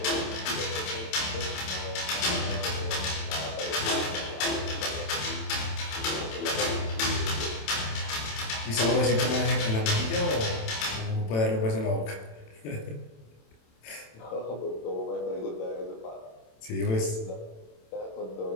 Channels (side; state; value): right; late; 27 ms